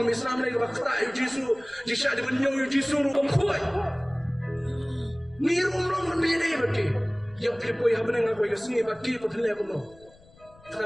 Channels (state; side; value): noise; left; rumble, 26 dB below the sound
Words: Islam lagi bakta Yesu. Jisha di benyau Yesu rum kuat. Ni rumlong menjadi bagi. Yang pelipoi apa nang aku ikasni bagi patlek kuno.